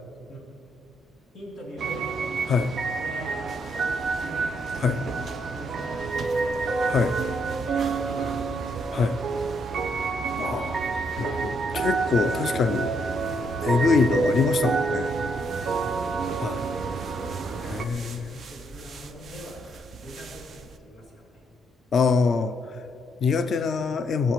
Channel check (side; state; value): both; normal; correlation 0.74